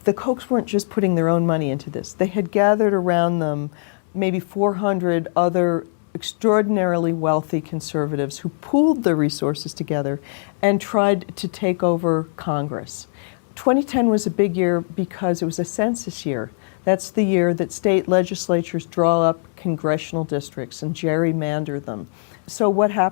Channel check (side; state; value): right; silent; 65 dB below the other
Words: the Kochs weren't just putting their own money into this. They had gathered around them maybe 400 other extraordinarily wealthy conservatives who pooled their resources together and tried to take over Congress. 2010 was a big year because it was a census year. That's the year that state legislatures draw up congressional districts and gerrymander them. So what